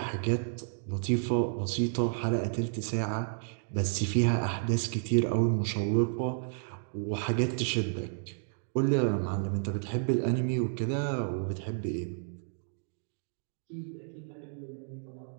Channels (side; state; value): left; silent; digital silence